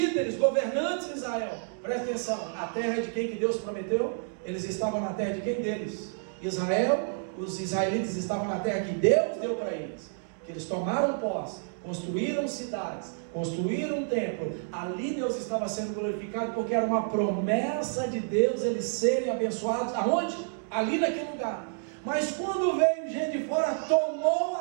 governantes de Israel. Presta atenção, a terra de quem que Deus prometeu? Eles estavam na terra de quem deles? Israel. Os israelitas estavam na terra que Deus deu para eles, que eles tomaram posse, construíram cidades, construíram um templo. Ali Deus estava sendo glorificado, porque era uma promessa de Deus eles serem abençoados. Aonde? Ali naquele lugar. Mas quando veio gente de fora, tomou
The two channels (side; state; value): left; silent; digital silence